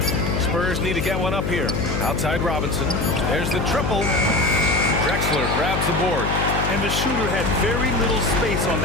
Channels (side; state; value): left; noise; hum, 1 dB below the sound